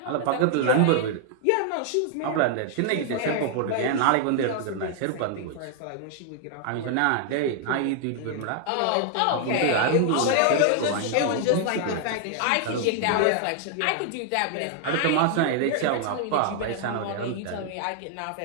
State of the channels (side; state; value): both; different; correlation 0.00